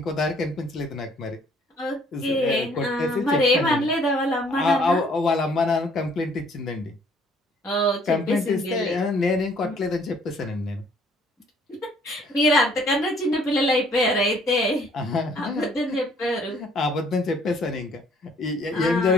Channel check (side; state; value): both; normal; correlation 0.61